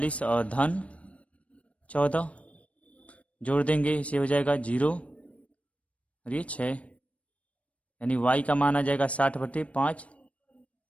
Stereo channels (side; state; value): right; late; 0.064 ms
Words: और धन 14, जोड़ देंगे, इसे हो जाएगा 0 और ये 6, यानी y का मान आ जाएगा 60/5,